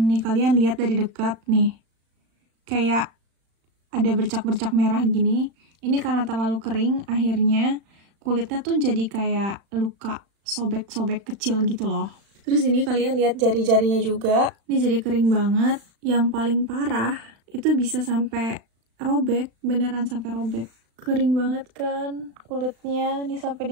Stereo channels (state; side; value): late; left; 35 ms